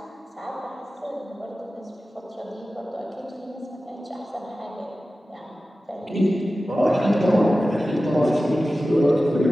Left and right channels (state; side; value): normal; both; correlation 0.95